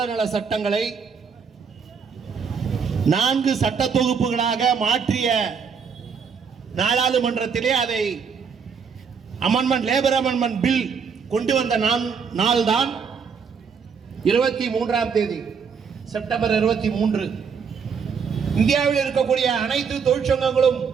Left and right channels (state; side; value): quieter; left; 6.2 dB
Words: நல சட்டங்களை 4 சட்ட தொகுப்புகளாக மாற்றிய நாடாளுமன்றத்திலே அதை லேபர் அமெண்ட்மெண்ட் பில் கொண்டு வந்த நாள் தான் 23ஆம் தேதி செப்டம்பர் 23. இந்தியாவில் இருக்கக்கூடிய அனைத்து தொழிற்சங்கங்களும்